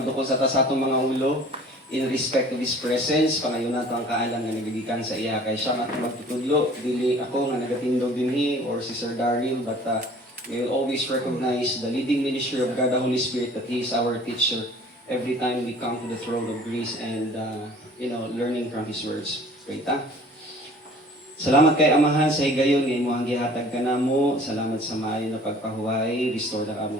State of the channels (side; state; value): both; normal; correlation 0.49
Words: sa tasatong mga ulo, in respect to His presence, panayon nato ang kaalam nga nagagikan sa iya, kay siya matong magtutudlo, dili ako nga nagatindog dinhi, or si Sir Daryl, but we will always recognize the leading ministry of God, the Holy Spirit, that He is our teacher every time we come to the throne of grace and, learning from His words. Wait, Salamat kay Amahan sa higayon nga imong gihatag kanamo. Salamat sa maayo na pagpahuway. Restore na